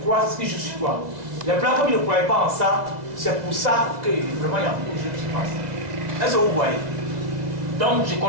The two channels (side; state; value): left; late; 2.0 ms